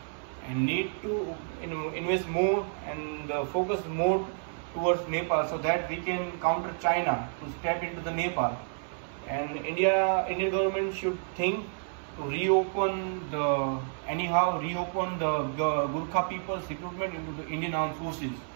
and need to invest more and focus more towards Nepal, so that we can counter China to step into the Nepal. And Indian government should think to reopen the Gurkha people's recruitment into the Indian armed forces.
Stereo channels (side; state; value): left; silent; 58 dB below the other